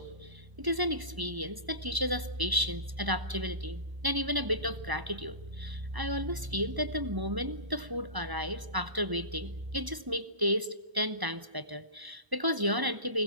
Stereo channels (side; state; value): left; late; 1.0 ms